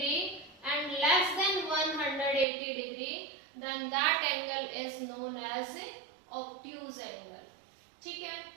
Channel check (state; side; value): drops out; left; at 2.5 s